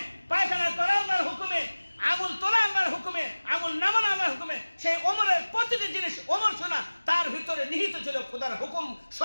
পায়খানা করা আল্লাহর হুকুমে, আঙুল তোলা আল্লাহর হুকুমে, আঙুল নামানো আল্লাহর হুকুমে। সেই ওমরের প্রতিটি জিনিস ওমর শোনা, তার ভিতরে নিহিত ছিল খোদার হুকুম,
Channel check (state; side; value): inverted; both; correlation -1.00